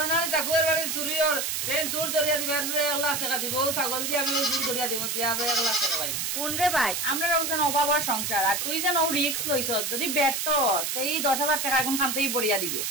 না টাকুয়ার বাড়ি চুরি আর দেন চুর ধরিয়া দিবা 1 লাখ টাকা দিব ছাগল দিয়ে আমি চুর ধরিয়া দিব দিয়া 1 লাখ টাকা পাইব কোন রে ভাই আমরা রোজন অভাবর সংসার আর তুই যেন রিস্ক লইছ যদি ব্যর্থস এই 10,000 টাকা এখন খানতেই পড়িয়া দিবে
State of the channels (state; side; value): noise; right; hiss, 1 dB below the sound